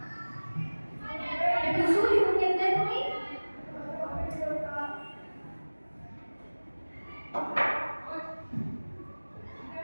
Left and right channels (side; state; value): both; inverted; correlation -1.00